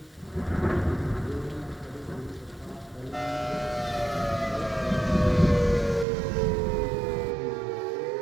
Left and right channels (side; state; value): left; drops out; at 6.1 s